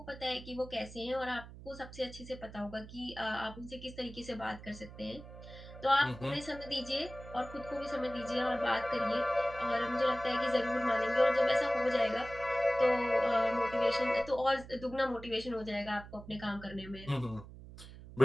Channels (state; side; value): noise; right; hum, 15 dB below the sound